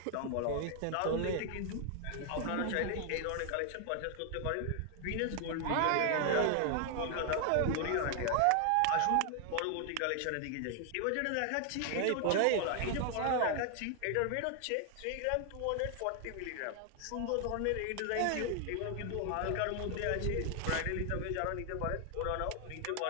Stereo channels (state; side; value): different; both; correlation 0.00